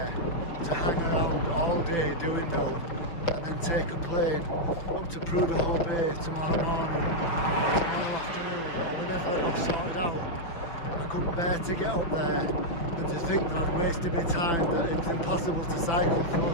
to hang around all day doing nothing and then take a plane up to Prudhoe Bay tomorrow morning, or tomorrow afternoon, or whenever I got sorted out. I couldn't bear to get up there and to think that I'd wasted my time, that it was impossible to cycle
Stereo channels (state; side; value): late; right; 6.0 ms